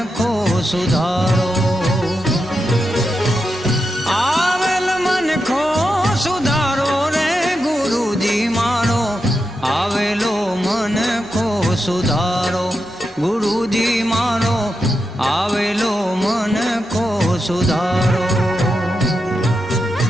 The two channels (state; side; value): normal; both; correlation 0.87